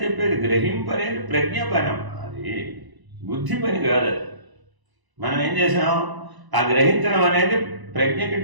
చెప్పేది. గ్రహింపనేది ప్రజ్ఞ పని. అది బుద్ధి పని కాదు. మనం ఏం చేసాం? ఆ గ్రహించడం అనేది ప్రజ్ఞకి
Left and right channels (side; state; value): left; late; 1.0 ms